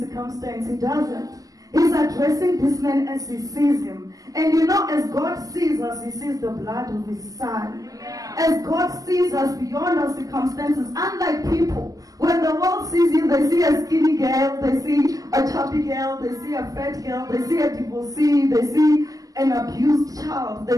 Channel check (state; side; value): late; left; 0.17 ms